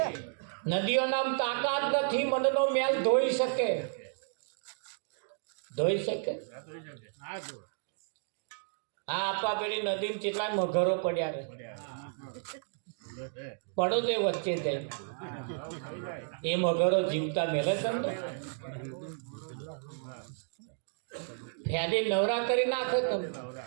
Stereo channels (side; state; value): left; silent; digital silence